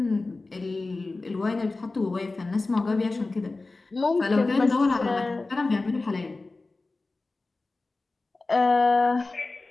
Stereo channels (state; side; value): quieter; right; 3.4 dB